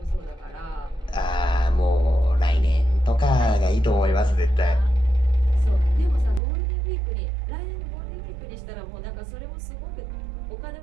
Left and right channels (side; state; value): left; drops out; at 6.4 s